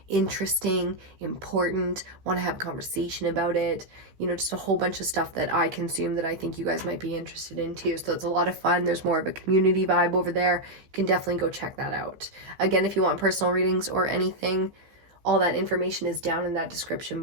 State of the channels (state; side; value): late; left; 15 ms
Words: interesting, important, want to have conversation about it. You know, just a whole bunch of stuff that I consume that I think you guys might be interested in too. So it's a lot of fun. There's more of a community vibe over there. You can definitely go check that out. Again, if you want personal readings or anything, all that information is down in that description